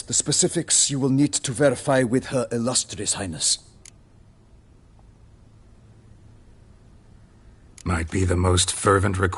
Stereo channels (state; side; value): identical; both; correlation 1.00